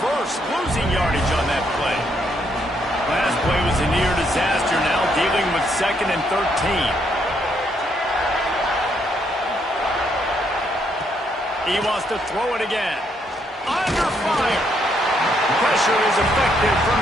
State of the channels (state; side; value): normal; both; correlation 0.74